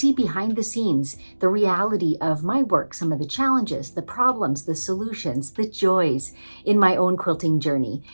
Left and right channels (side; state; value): both; inverted; correlation -1.00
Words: behind the scenes the reality of my work, some of the challenges, the problems, the solutions, the joys in my own quilting journey.